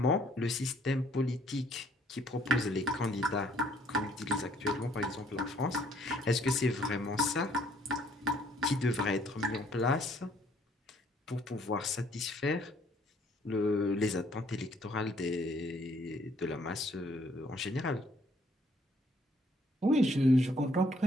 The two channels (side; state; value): both; normal; correlation 0.64